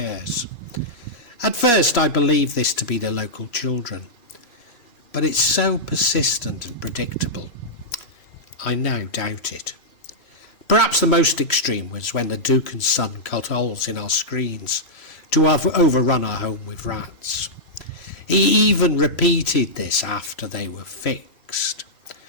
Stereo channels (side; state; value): right; late; 3.0 ms